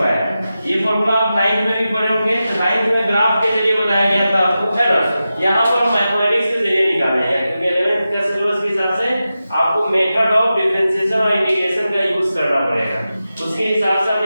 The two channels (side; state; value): both; inverted; correlation -0.92